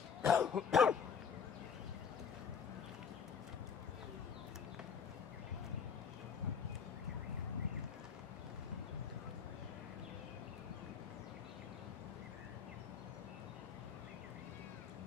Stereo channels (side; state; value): right; quieter; 6.6 dB